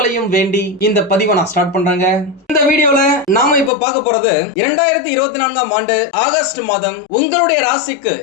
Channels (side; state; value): right; drops out; at 3.7 s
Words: வேண்டி இந்த பதிவை நான் ஸ்டார்ட் பண்றேங்க. இந்த வீடியோல நாம இப்ப பார்க்க போறது 2024ஆம் ஆண்டு ஆகஸ்ட் மாதம் உங்களுடைய ராசிக்கு